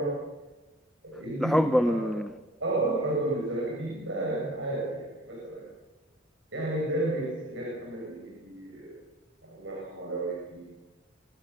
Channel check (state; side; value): normal; both; correlation 0.52